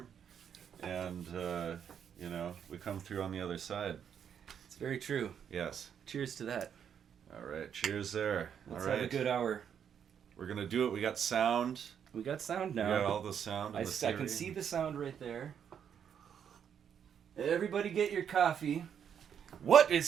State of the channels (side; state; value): left; quieter; 8.2 dB